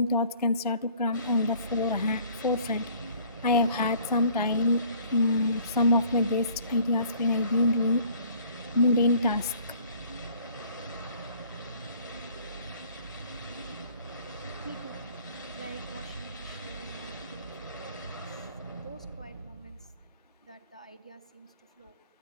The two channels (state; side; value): inverted; both; correlation -0.55